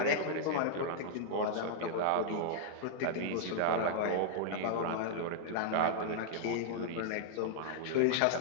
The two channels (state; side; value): different; both; correlation -0.01